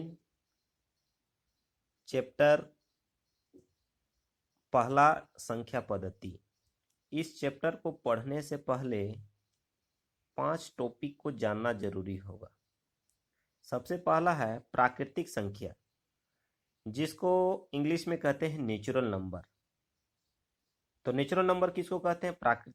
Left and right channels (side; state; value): both; identical; correlation 1.00